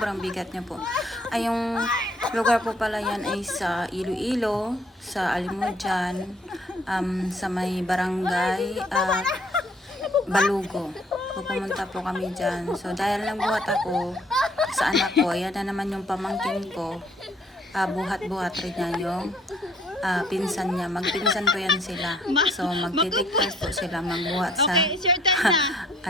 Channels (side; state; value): both; normal; correlation 0.62